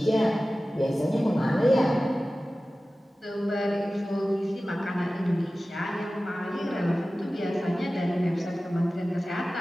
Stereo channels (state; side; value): normal; both; correlation 0.96